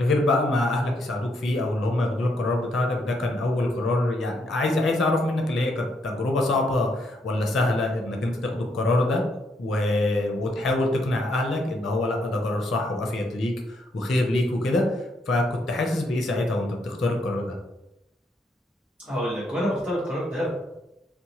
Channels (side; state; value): both; normal; correlation 0.75